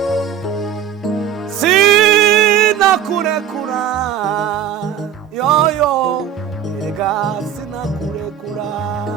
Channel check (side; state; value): left; quieter; 9.5 dB